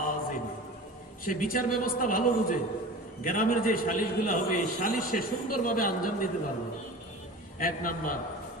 সে বিচার ব্যবস্থা ভালো বুঝে। গ্রামের যে সালিশগুলো হবে, এই সালিশ সে সুন্দরভাবে আঞ্জাম দিতে পারবে। 1 নম্বর,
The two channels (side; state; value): both; normal; correlation 0.36